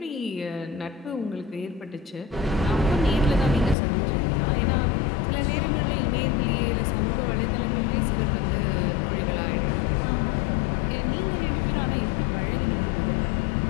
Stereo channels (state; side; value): drops out; right; at 3.8 s